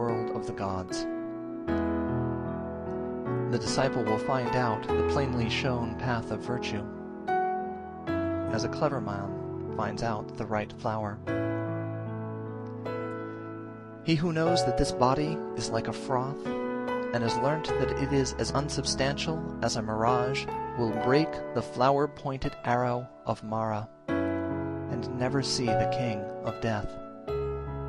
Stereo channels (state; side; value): identical; both; correlation 1.00